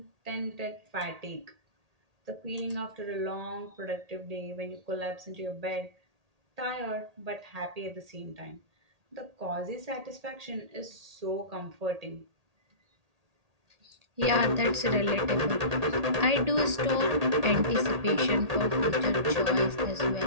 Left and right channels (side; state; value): left; late; 1.8 ms